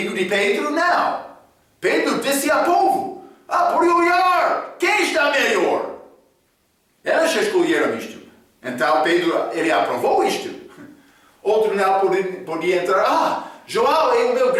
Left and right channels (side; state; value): both; identical; correlation 1.00